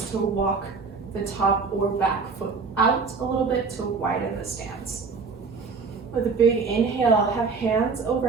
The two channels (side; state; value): left; quieter; 4.7 dB